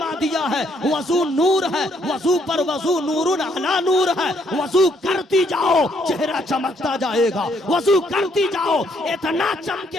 دیا ہے وضو نور ہے، وضو پر وضو نور علی نور ہے، وضو کرتی جاؤ چہرہ چمکتا جائے گا، وضو کرتی جاؤ اتنا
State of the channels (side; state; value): both; normal; correlation 0.70